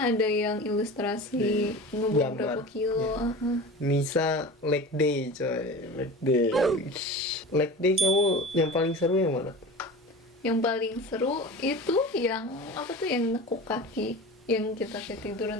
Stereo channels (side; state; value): both; normal; correlation 0.34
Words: ada yang ilustrasi ngebuang Gambar. berapa kilo. Nisa leg day coy, leg day. Leg day kamu yang paling seru yang mana? Yang paling seru itu yang yang nekuk kaki, yang kita kayak